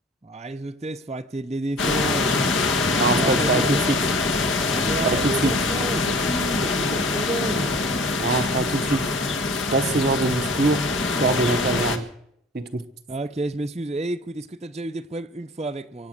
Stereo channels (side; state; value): both; normal; correlation 0.44